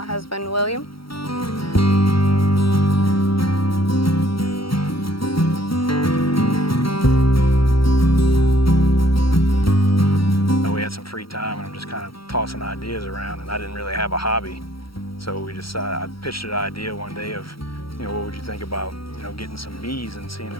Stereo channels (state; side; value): late; right; 0.75 ms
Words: husband, William. We had some free time, and I'm just kind of tossing ideas around, and I didn't really have a hobby. So we I pitched an idea one day of, what would you think about, getting some bees and seeing